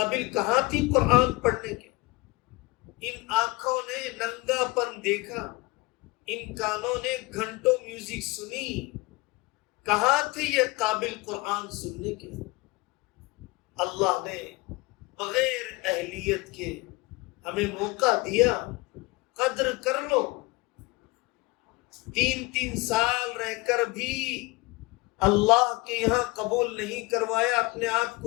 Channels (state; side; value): quieter; right; 23.7 dB